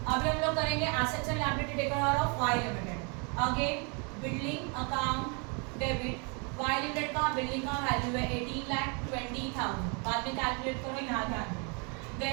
अभी हम लोग करेंगे assets and liability taken over of Y limited. Again building account debit. Y limited का building का value है 18,20,000. बाद में कैलकुलेट करो, यहाँ ध्यान दो.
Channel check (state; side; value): quieter; left; 34.7 dB